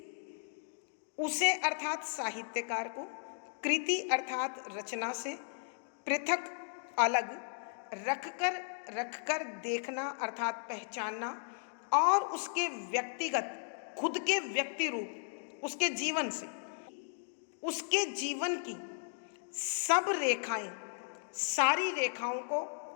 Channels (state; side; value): silent; right; digital silence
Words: उसे अर्थात साहित्यकार को कृति अर्थात रचना से पृथक अलग रखकर देखना अर्थात पहचानना और उसके व्यक्तिगत खुद के व्यक्ति रूप उसके जीवन से, उसके जीवन की सब रेखाएं, सारी रेखाओं को